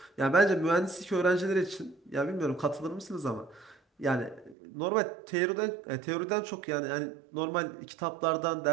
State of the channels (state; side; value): drops out; left; at 4.5 s